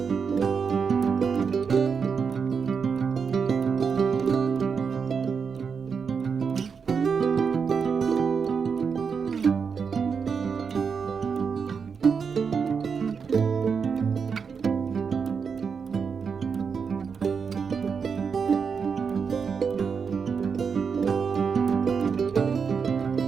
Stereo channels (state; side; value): quieter; left; 6.0 dB